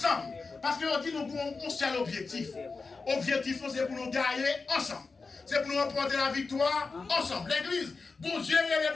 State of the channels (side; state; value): right; quieter; 4.3 dB